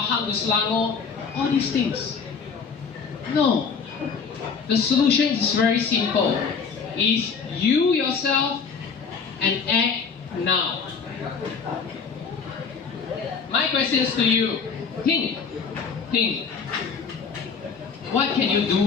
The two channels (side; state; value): right; quieter; 5.7 dB